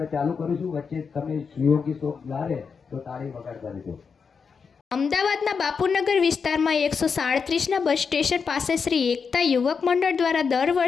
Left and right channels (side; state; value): right; quieter; 5.7 dB